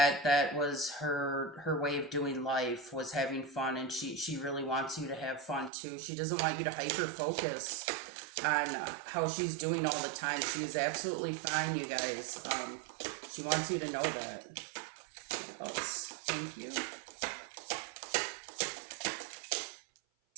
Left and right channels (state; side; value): drops out; left; at 5.7 s